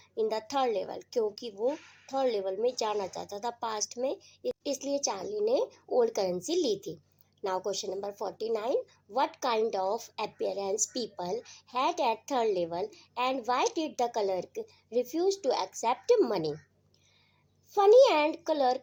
the third level, क्योंकि वो थर्ड लेवल में जाना चाहता था पास्ट में, इसलिए चार्ली ने ओल्ड करेंसी ली थी। Now question number 49, what kind of appearance people had at third level and why did the clerk refuse to accept money? Funny and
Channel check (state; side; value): identical; both; correlation 1.00